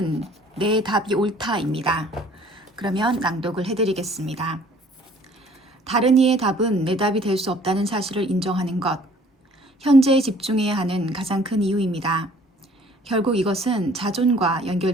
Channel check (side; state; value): both; normal; correlation 0.55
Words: 내 답이 옳다입니다. 그러면 낭독을 해드리겠습니다. 다른 이의 답은 내 답이 될 수 없다는 사실을 인정하는 것. 현재에 집중해야 하는 가장 큰 이유입니다. 결국 이것은 자존과